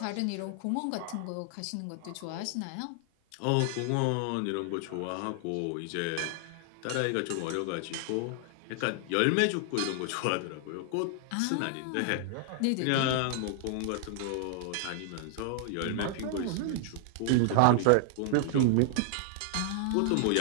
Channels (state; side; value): different; both; correlation 0.00